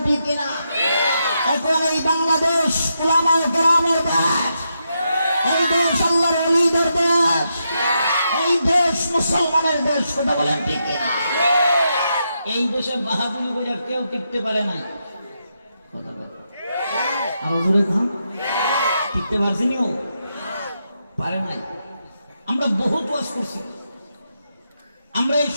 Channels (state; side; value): inverted; both; correlation -0.83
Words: ঠিক কিনা? এখন এই বাংলাদেশ উলামায়ে কেরামের দেশ, এই দেশ আল্লাহর ওলিদের দেশ, এই দেশ মুসলমানের দেশ। কথা বলেন ঠিক কিনা? এই দেশে বাহাদুরি করে কেউ টিকতে পারে নাই। কথা বলেন আরো জোরে খান, টিকতে পারছেনি? ও পারে নাই। আমরা বহুত ওয়াজ করছি। আমরা এই